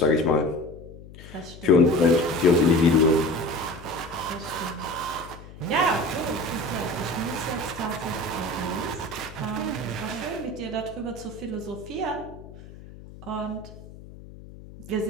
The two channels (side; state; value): left; noise; hum, 17 dB below the sound